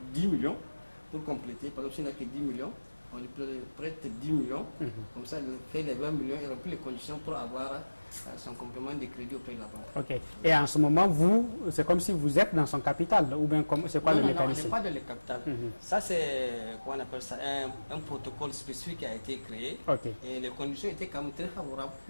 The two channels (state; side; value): inverted; both; correlation -1.00